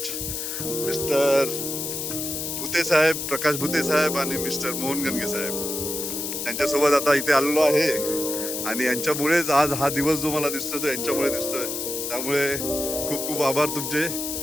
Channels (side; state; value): left; noise; hiss, 4 dB below the sound